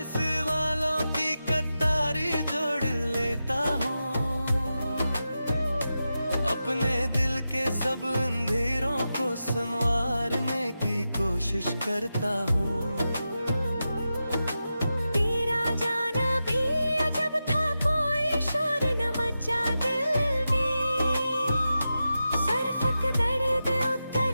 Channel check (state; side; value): inverted; both; correlation -0.91